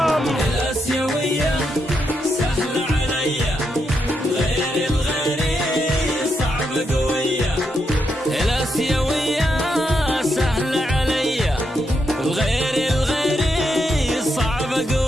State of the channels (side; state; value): both; normal; correlation 0.82